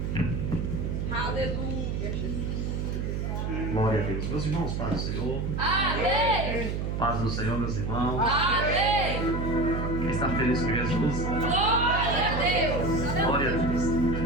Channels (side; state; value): right; noise; hum, 1 dB below the sound